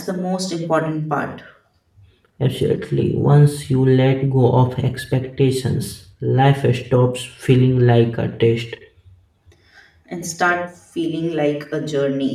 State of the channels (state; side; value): identical; both; correlation 1.00